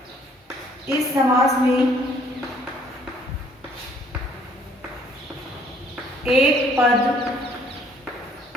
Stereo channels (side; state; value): both; normal; correlation 0.60